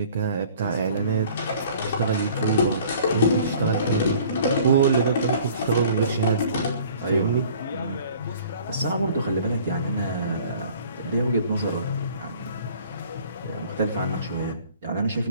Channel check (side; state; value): both; inverted; correlation -0.51